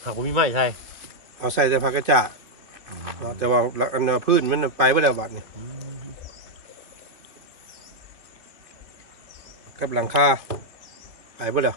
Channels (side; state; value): left; late; 2.5 ms